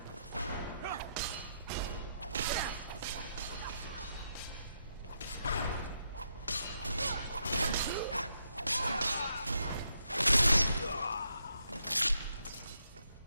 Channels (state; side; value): inverted; both; correlation -0.79